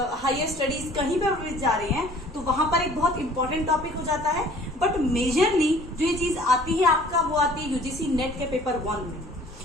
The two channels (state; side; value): normal; both; correlation 0.52